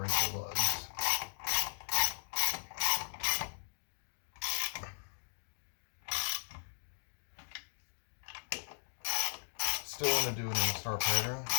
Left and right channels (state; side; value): silent; right; digital silence